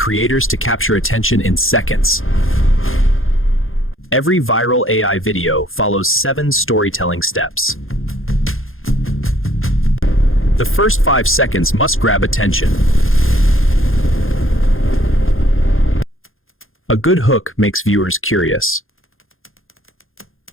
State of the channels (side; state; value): right; late; 0.60 ms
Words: to capture attention in seconds. Every viral AI video follows 7 storytelling steps. The first 5 seconds must grab attention. A good hook makes viewers curious.